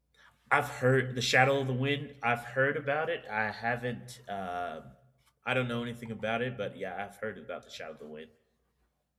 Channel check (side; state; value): both; identical; correlation 1.00